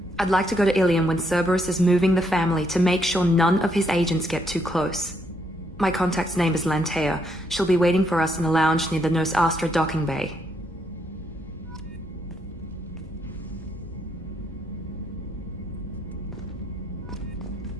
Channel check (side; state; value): both; normal; correlation 0.74